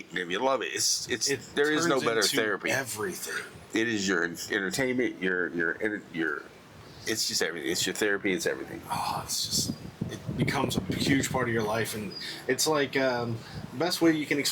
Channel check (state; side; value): identical; both; correlation 1.00